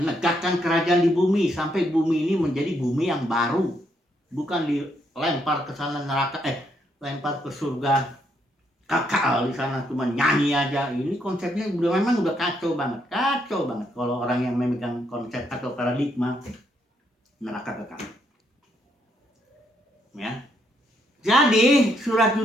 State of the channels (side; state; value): both; normal; correlation 0.75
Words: kerajaan di bumi sampai bumi ini menjadi bumi yang baru, bukan dilempar ke sana neraka, lempar ke surga kekal di sana cuma nyanyi aja. Ini konsepnya memang udah kacau banget kalau orang yang memegang konsep atau paradigma neraka kekal. Ya, jadi surat